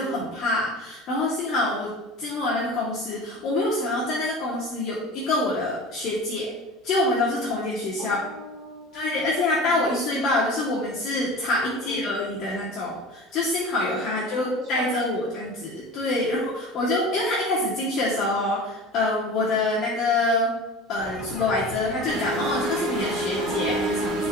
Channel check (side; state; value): both; normal; correlation 0.36